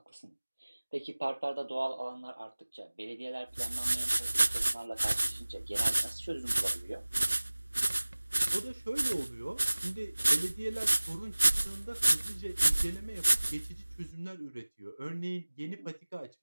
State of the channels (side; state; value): both; inverted; correlation -1.00